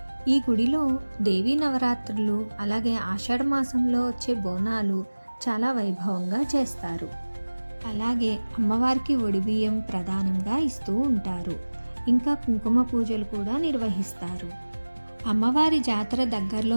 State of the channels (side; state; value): both; inverted; correlation -1.00